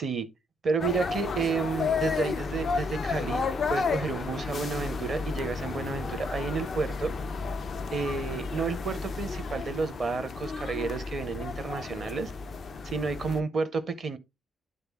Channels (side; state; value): both; normal; correlation 0.73